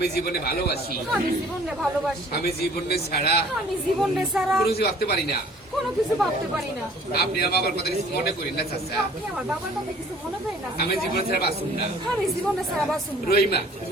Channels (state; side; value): normal; both; correlation 0.53